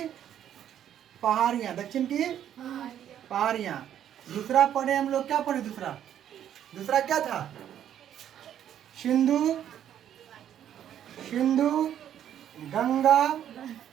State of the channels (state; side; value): quieter; left; 10.3 dB